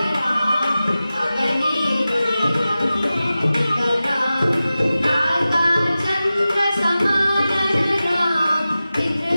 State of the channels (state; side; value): inverted; both; correlation -0.95